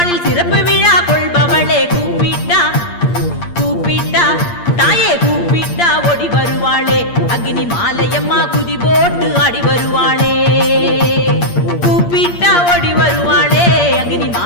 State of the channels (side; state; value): right; late; 8.6 ms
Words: சிறப்பு விழா கொள்பவளே கூப்பிட்டா கூப்பிட்டா தாயே கூப்பிட்டா ஓடி வருவாளே அக்னி மாலையம்மா குதி போட்டு ஆடி வருவாளே கூப்பிட்டா ஓடி வருவாளே அக்னி